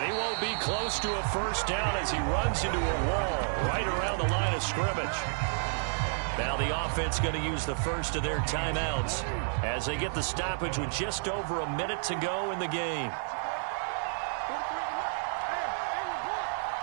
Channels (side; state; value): left; silent; digital silence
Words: he won't be close to a 1st down as he runs into a wall right around the line of scrimmage. Now the offense going to use the first of their timeouts as they get the stoppage with just over a minute to go in the game.